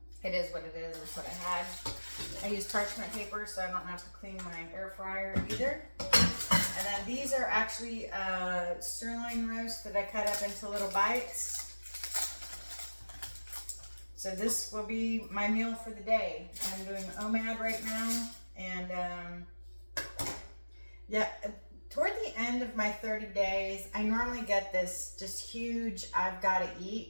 it is what it is. It's what I had. I use parchment paper so I don't have to clean my air fryer either. And then these are actually sirloin roast that I cut up into little bites. So this will be my meal for the day. I'm doing OMAD right now, and yeah, toward the end of my 30 days, I normally get this just huge I've got to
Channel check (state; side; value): inverted; both; correlation -1.00